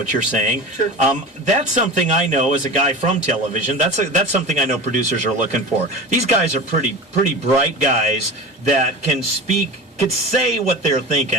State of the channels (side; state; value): both; normal; correlation 0.31